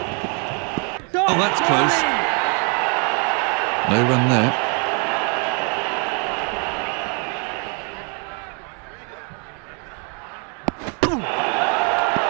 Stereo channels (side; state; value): left; quieter; 36.6 dB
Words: Oh, that's close. No run there.